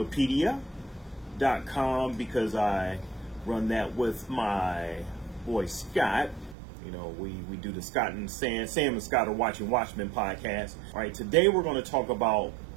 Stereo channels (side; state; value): left; drops out; at 6.6 s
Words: because I run that with my boy Scott. You know, we do the Scott and Sam and Scott are watching Watchmen podcast. All right, today we're going to talk about